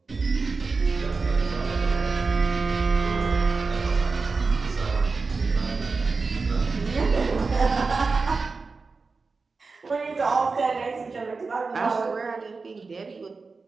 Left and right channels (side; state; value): left; quieter; 4.3 dB